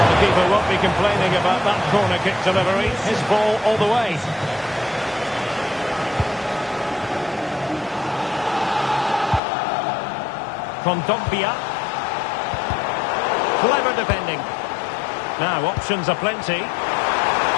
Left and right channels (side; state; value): right; drops out; at 9.4 s